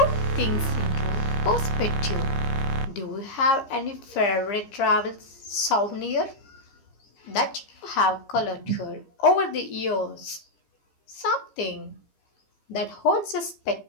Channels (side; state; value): right; late; 15 ms